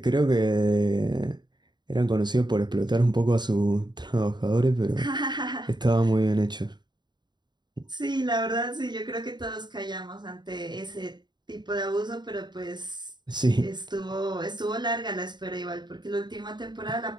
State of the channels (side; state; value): left; late; 0.21 ms